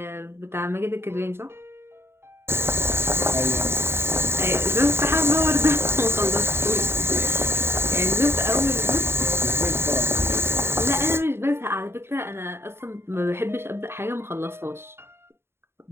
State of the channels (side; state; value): left; late; 0.12 ms